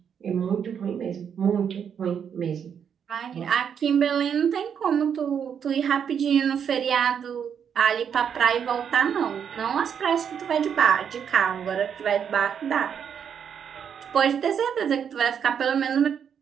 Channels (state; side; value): quieter; left; 7.8 dB